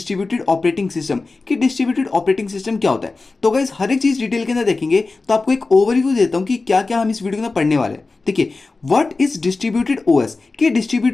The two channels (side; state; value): right; quieter; 3.7 dB